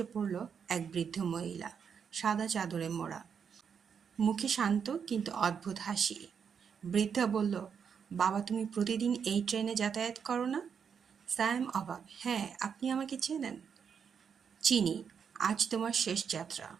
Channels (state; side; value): quieter; left; 6.9 dB